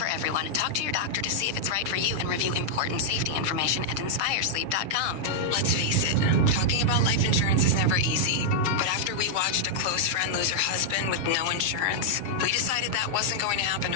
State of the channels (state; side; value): late; left; 7.3 ms